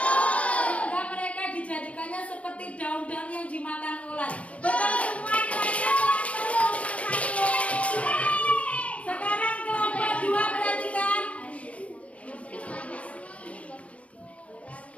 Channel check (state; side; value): late; right; 0.064 ms